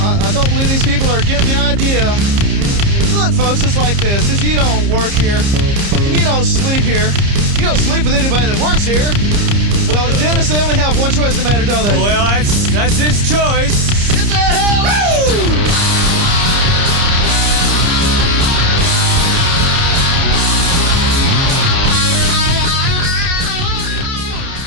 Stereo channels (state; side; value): late; left; 30 ms